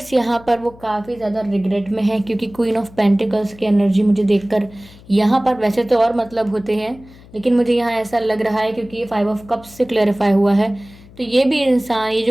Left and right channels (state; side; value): noise; left; hum, 22 dB below the sound